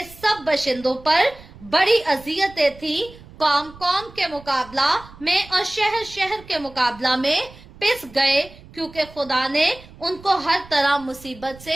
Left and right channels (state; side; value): noise; right; rumble, 21 dB below the sound